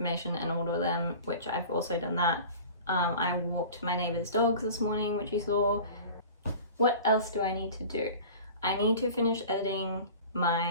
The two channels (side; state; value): both; inverted; correlation -0.40